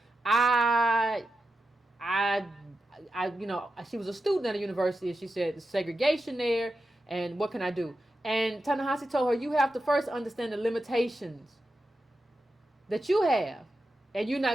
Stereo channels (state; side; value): normal; both; correlation 0.90